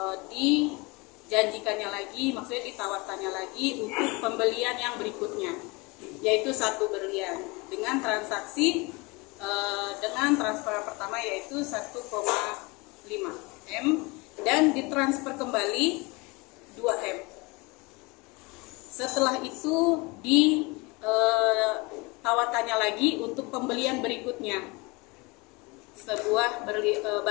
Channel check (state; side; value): quieter; right; 26.3 dB